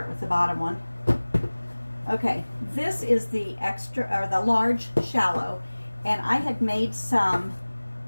with the bottom one. Okay, this is the the large shallow, and I had made some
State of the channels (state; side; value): inverted; both; correlation -1.00